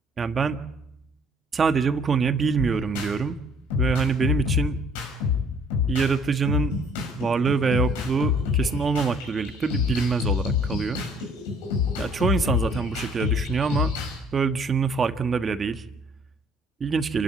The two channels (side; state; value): both; normal; correlation 0.59